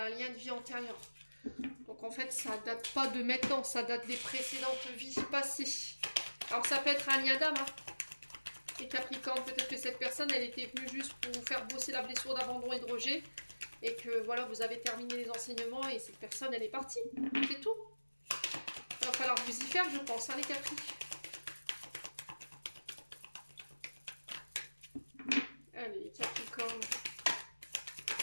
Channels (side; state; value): both; inverted; correlation -1.00